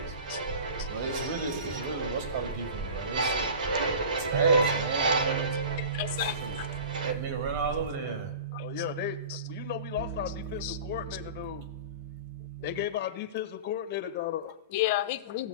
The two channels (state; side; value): inverted; both; correlation -0.35